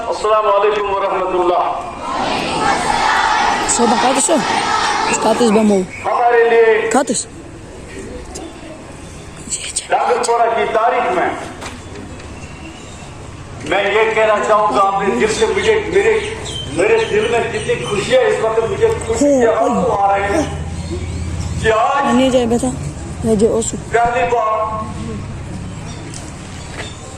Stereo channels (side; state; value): both; identical; correlation 1.00